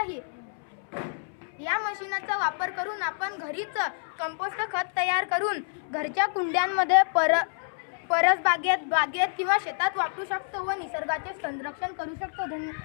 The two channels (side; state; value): right; silent; 59 dB below the other